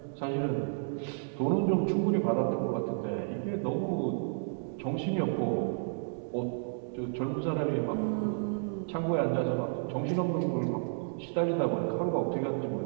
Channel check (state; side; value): silent; left; digital silence